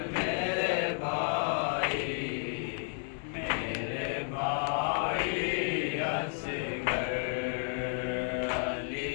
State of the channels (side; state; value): right; silent; 56 dB below the other